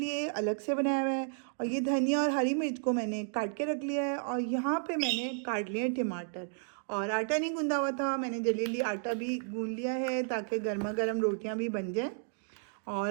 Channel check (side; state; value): left; silent; digital silence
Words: अलग से बनाया हुआ है। और ये धनिया और हरी मिर्च को मैंने काट के रख लिया है। और यहाँ पे मैंने काट लिया है टमाटर। और आटा नहीं गूंदा हुआ था, मैंने जल्दी जल्दी आटा भी गूंद लिया है ताकि गर्मा गर्म रोटियाँ भी बन जाएँ। और